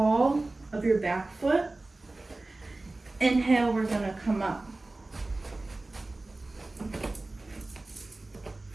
of your back foot. Inhale, we're gonna come up.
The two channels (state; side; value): quieter; left; 3.0 dB